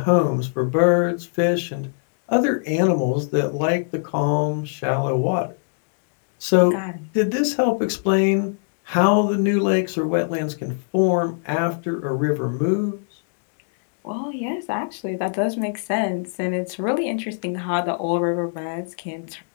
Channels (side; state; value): right; silent; digital silence